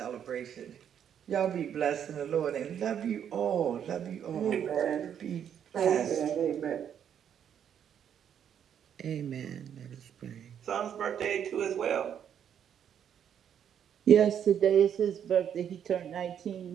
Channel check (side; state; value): left; quieter; 8.9 dB